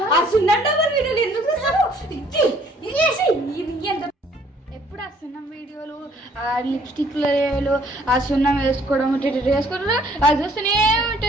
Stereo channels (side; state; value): both; normal; correlation 0.61